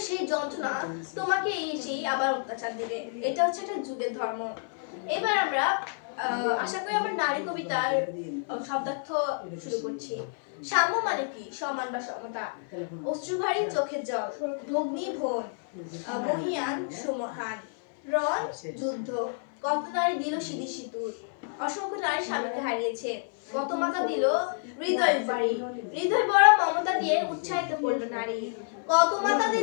সেই যন্ত্রণা তোমাকে এসেই আবার অত্যাচার দিবে। এটা হচ্ছে একটা যুগের ধর্ম। এবার আমরা আশা করি আমরা নারী কবিতার শব্দার্থ শুরু করছি। সাম্য মানে কি? সমান বা সমতা। অশ্রুভারী চোখের জল, ভগ্নী ভোন, মহিয়ান সুমহান, রণ যুদ্ধ, কত নারী দিল সিঁদি সিঁদুর, অসংখ্য নারী স্বামীকে হারিয়েছে, কত মাতা দিল হৃদয় বাড়ি, হৃদয় বড় মমতা দিয়ে উৎসাহিত করলো নারী, কত মাতা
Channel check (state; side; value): silent; right; 56 dB below the other